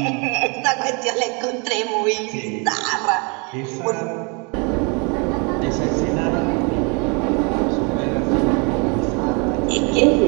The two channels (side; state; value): left; quieter; 32.7 dB